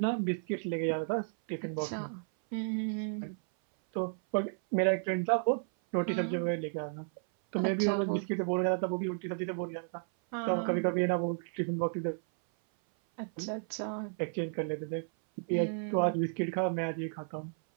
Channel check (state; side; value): silent; left; 56 dB below the other